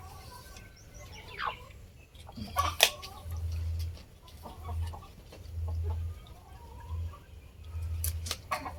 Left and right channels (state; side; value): identical; both; correlation 1.00